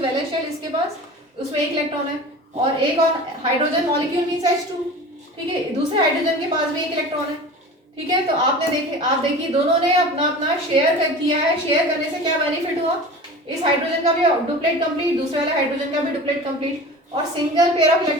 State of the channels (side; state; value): both; normal; correlation 0.36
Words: valence shell, इसके पास उसमें एक इलेक्ट्रॉन है। और एक और हाइड्रोजन मॉलिक्यूल मींस H2, ठीक है, दूसरे हाइड्रोजन के पास भी एक इलेक्ट्रॉन है, ठीक है। तो आप देखिए दोनों ने अपना अपना शेयर किया है। शेयर करने से क्या बेनिफिट हुआ, इस हाइड्रोजन का भी डुप्लेट कंप्लीट, दूसरे वाले हाइड्रोजन का भी डुप्लेट कंप्लीट, और single pair of